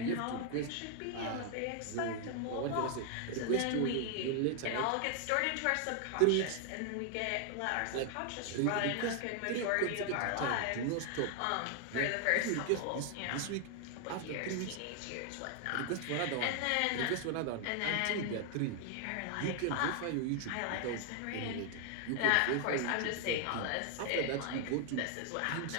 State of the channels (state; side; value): different; both; correlation 0.00